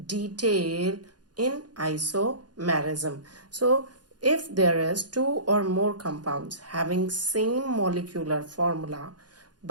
detail in isomerism. So if there is two or more compounds having same molecular formula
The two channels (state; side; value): late; left; 0.69 ms